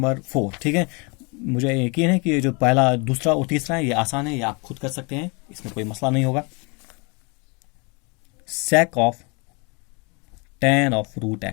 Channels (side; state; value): right; quieter; 31.3 dB